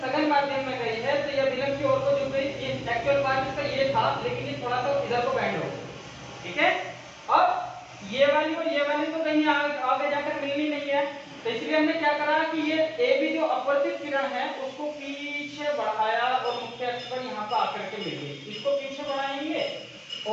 माध्यम में गई है, तो ये अभिलंब की ओर को झुक गई। ये एक्चुअल पार्ट इसका ये था, लेकिन ये थोड़ा सा इधर को बेंड हो गया। ठीक है, अब ये वाली और ये वाली तो कहीं आगे जाकर मिलनी नहीं है, तो इसलिए हमने क्या करा कि ये AB जो अपवर्तित किरण है उसको पीछे बढ़ाया और मुख्य अक्ष पर यहाँ पर आकर के मिल गई। इसको पीछे बढ़ाएंगे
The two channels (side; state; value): both; identical; correlation 1.00